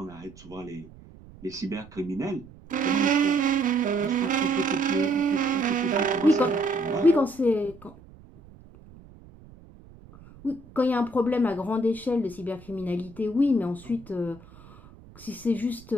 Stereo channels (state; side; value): noise; right; rumble, 22 dB below the sound